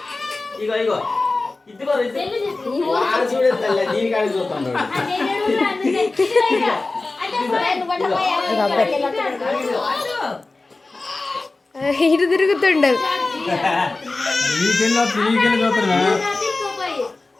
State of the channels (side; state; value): right; quieter; 3.4 dB